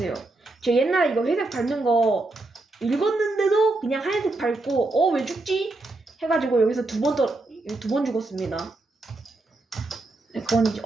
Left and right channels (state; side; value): quieter; left; 3.0 dB